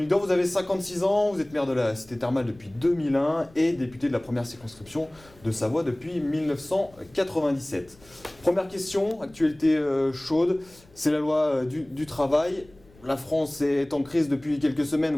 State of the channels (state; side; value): noise; left; rumble, 27 dB below the sound